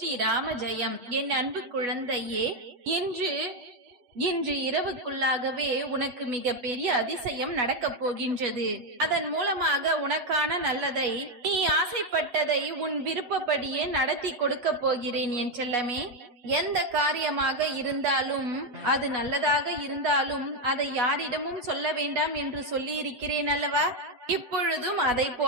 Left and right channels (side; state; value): left; late; 8.1 ms